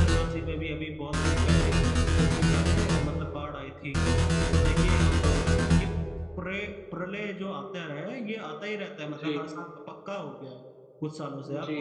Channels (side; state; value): both; identical; correlation 1.00